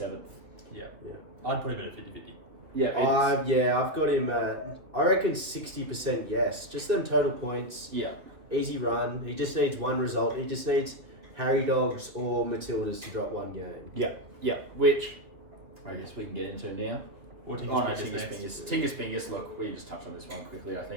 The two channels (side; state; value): left; late; 2.7 ms